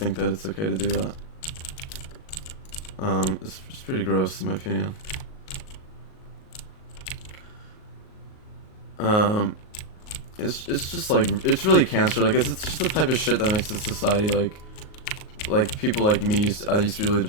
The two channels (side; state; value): right; late; 38 ms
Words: that it's okay to do that. It's pretty gross in my opinion. It's just like, it's really cancer. Like it's just the type of shit that makes this society like people like me I used to be really